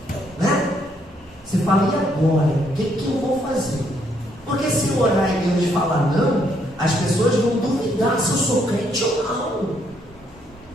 né? Você fala, e agora? O que eu vou fazer? Porque se eu orar e Deus falar não, as pessoas vão duvidar se eu sou crente ou não.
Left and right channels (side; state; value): both; normal; correlation 0.71